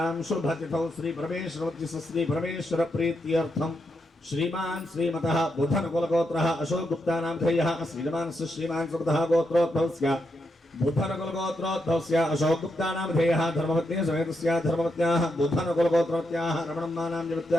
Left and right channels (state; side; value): normal; both; correlation 0.81